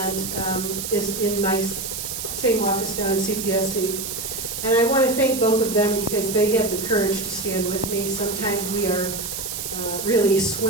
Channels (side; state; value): right; noise; hiss, 5 dB below the sound